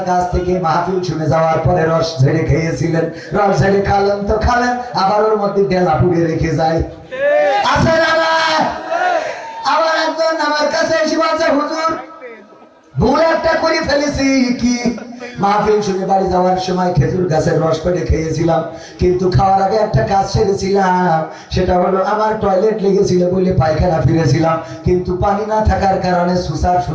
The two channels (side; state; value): both; identical; correlation 1.00